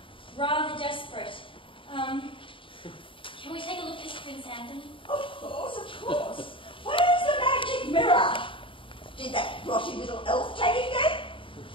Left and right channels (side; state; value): right; late; 0.25 ms